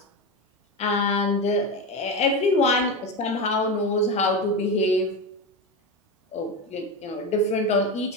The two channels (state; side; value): normal; both; correlation 0.18